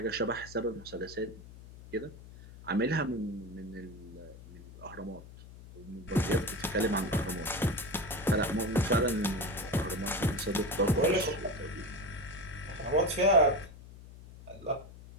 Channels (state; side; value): noise; left; hum, 17 dB below the sound